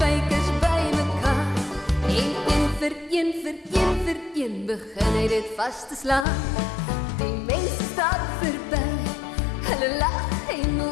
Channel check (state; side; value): drops out; right; at 6.2 s